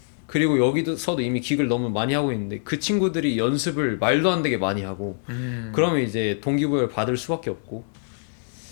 그리고 여기서도 이미 기교를 너무 많이 하고 있는데 그 친구들이 연습을 말도 안 되게 많이 하고 그러면 이제 동기부여를 받을 수밖에 없고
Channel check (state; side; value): silent; right; 62 dB below the other